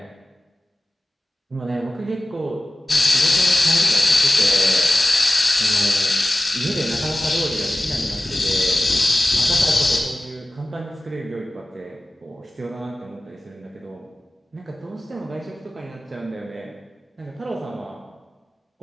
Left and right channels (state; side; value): normal; both; correlation 0.96